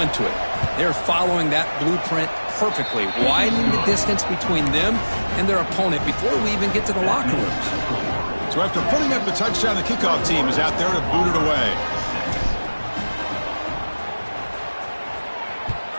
to it. They're following that blueprint perfectly, widening the distance between them and their opponent before we even get to the locker rooms. So after putting up the touchdown, the kickoff team is out there to boot it away.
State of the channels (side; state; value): both; inverted; correlation -1.00